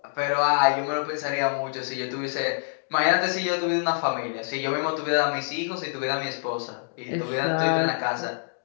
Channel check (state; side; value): silent; right; digital silence